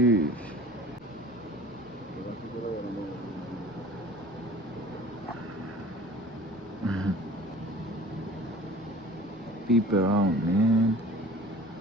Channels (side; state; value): left; noise; rumble, 27 dB below the sound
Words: Peep around, man.